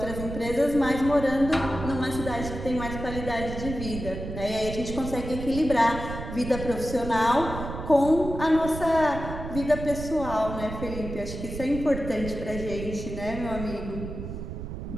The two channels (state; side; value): noise; right; rumble, 8 dB below the sound